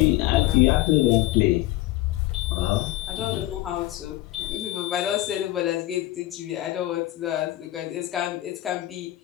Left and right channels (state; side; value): quieter; right; 16.2 dB